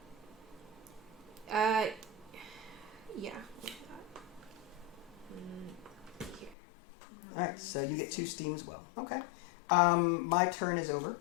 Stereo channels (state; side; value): drops out; right; at 6.6 s